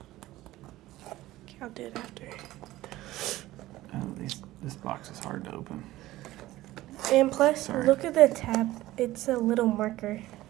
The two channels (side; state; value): left; quieter; 16.5 dB